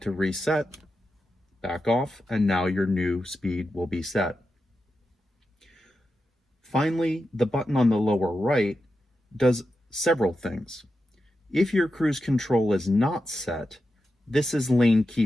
to reset, back off, and now your new speed will be set. Finally, the button on the lower right does several things. If your cruise control is not set, this is lane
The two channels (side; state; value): both; normal; correlation 0.89